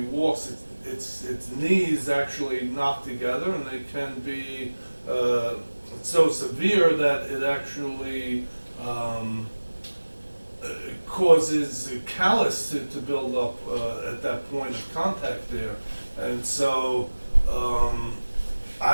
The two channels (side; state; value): both; inverted; correlation -1.00